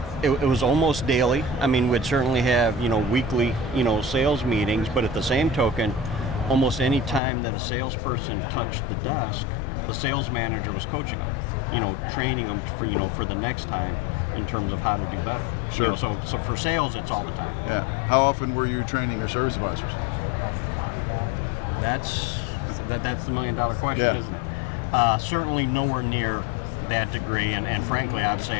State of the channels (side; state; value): right; drops out; at 7.2 s